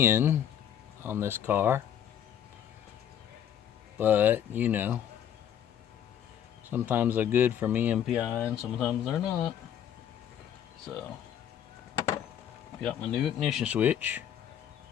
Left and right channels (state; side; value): quieter; right; 9.7 dB